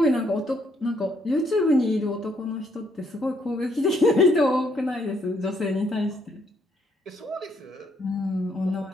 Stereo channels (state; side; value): normal; both; correlation 0.71